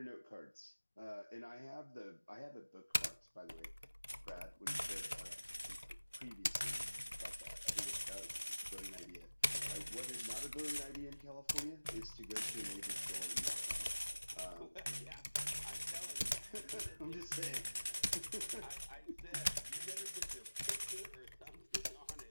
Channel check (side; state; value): both; inverted; correlation -1.00